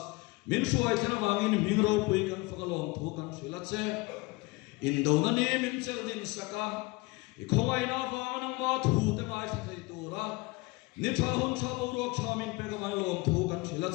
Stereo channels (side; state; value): right; quieter; 24.0 dB